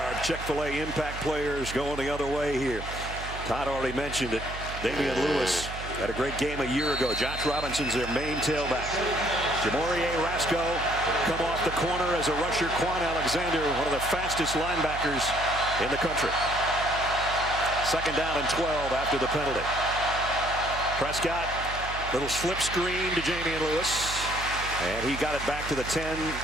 our Chick-fil-A impact players going the other way here. Todd already mentioned it. Damian Lewis had a great game a year ago. Josh Robinson's their main tailback. Jamorie Rasco come off the corner as a rusher. Quan Alexander, one of the fastest linebackers in the country. Second down and 12 after the penalty. Prescott, little slip screen to Jamian Lewis. And he got it back to the 10,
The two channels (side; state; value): right; noise; hum, 10 dB below the sound